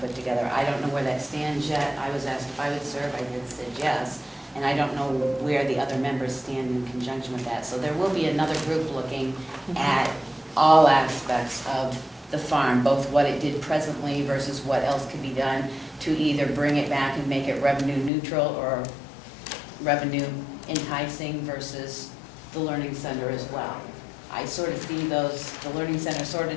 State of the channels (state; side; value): drops out; right; at 18.1 s